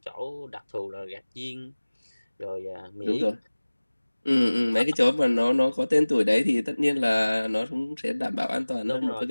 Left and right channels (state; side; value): inverted; both; correlation -1.00